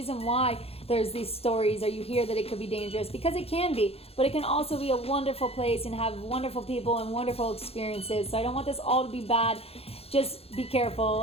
why there's these stories, or you hear that it could be dangerous, because it can be, but it can also be a wonderful place and have wonderful people and wonderful experiences. So I don't want this all to be bad. Just be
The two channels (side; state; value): right; late; 0.29 ms